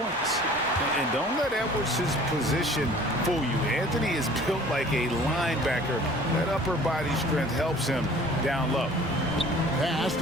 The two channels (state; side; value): normal; both; correlation 0.49